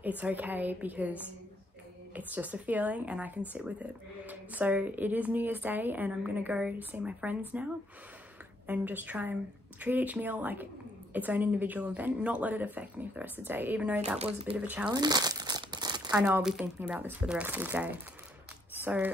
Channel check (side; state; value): both; normal; correlation 0.70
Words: it's okay because it's just a feeling and I can sit with it. So it is New Year's Day, and I'm gonna go see my friends now and just try and treat each meal like its own individual event, not let it affect me for the rest of the day. Even though that was a bit of a challenge, I know I'll be thinking about this for the rest of the day.